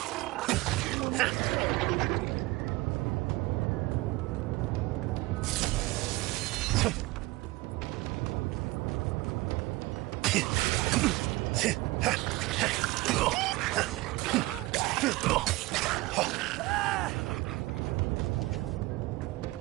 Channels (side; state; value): left; quieter; 20.8 dB